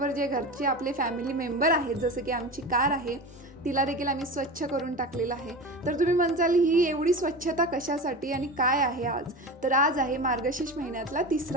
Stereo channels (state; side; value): normal; both; correlation 0.28